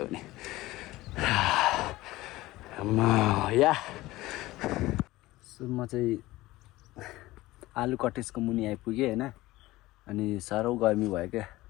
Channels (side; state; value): right; quieter; 18.2 dB